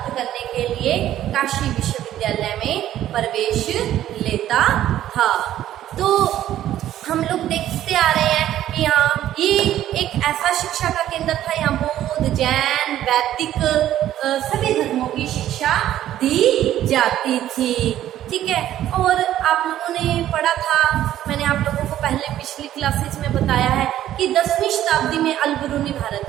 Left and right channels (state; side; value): quieter; left; 12.4 dB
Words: करने के लिए काशी विश्वविद्यालय में प्रवेश लेता था। तो हम लोग देखते आ रहे हैं कि यहाँ ये एक ऐसा शिक्षा का केंद्र था, यहाँ बौद्ध, जैन, वैदिक सभी धर्मों की शिक्षा दी जाती थी। ठीक है, और आप लोगों ने पढ़ा था, मैंने आप लोगों को पहले पिछली क्लासेस में बताया है कि 10वीं शताब्दी में अल-बिरूनी भारत